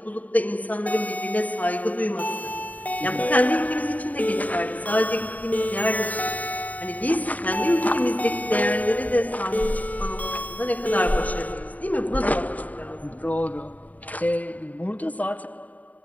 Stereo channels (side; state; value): right; late; 0.074 ms